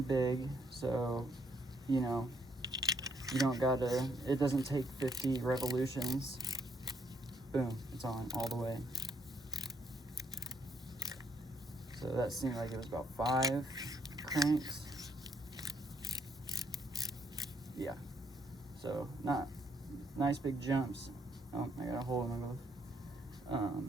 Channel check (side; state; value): both; normal; correlation 0.72